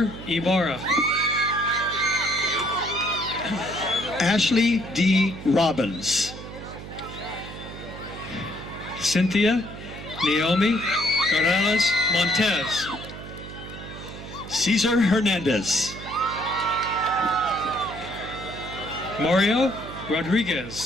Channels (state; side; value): noise; right; hum, 12 dB below the sound